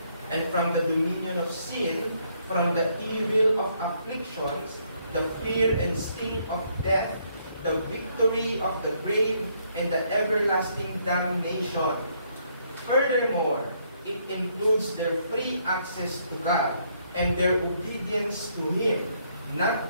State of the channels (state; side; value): inverted; both; correlation -0.71